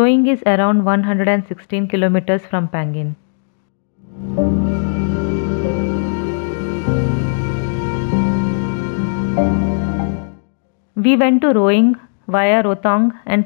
is around 116 kilometers from Pangin. We went to Roing via Roing and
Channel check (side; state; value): right; silent; digital silence